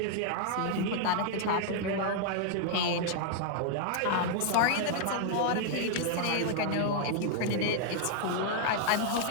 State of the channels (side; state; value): both; different; correlation -0.01